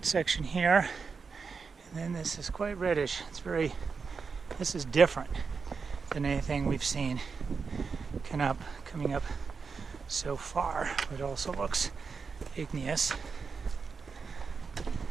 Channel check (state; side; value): quieter; left; 5.2 dB